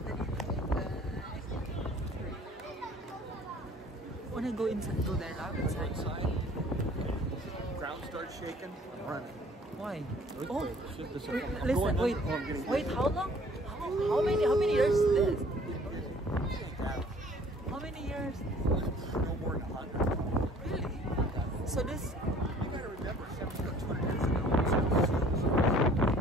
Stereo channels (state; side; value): normal; both; correlation 0.54